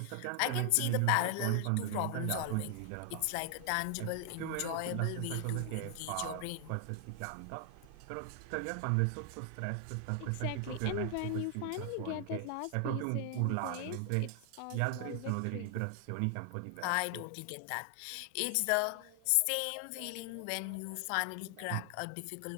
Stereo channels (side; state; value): both; different; correlation 0.00